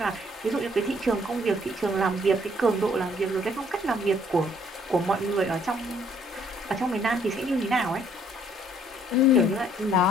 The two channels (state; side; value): normal; both; correlation 0.64